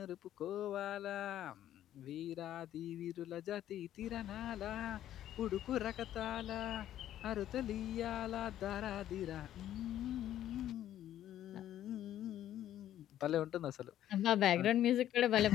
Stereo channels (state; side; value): quieter; right; 11.9 dB